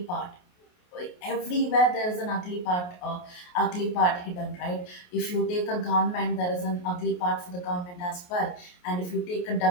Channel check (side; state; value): right; late; 28 ms